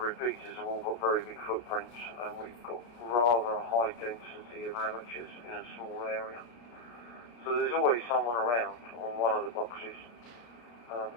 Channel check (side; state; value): right; late; 33 ms